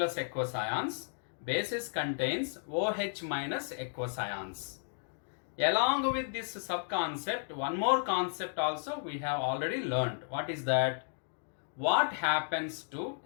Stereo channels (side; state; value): right; silent; digital silence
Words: aqueous ions, bases contains OH minus aqueous ions. Along with this sub-concept, one more concept also we have already learnt. What is that? What happens to